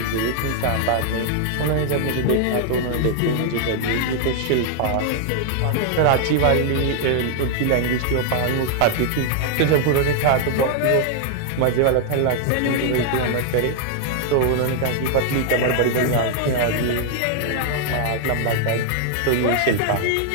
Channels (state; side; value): different; both; correlation 0.00